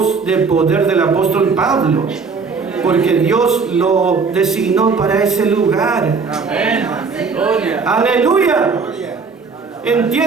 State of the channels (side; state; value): left; quieter; 5.0 dB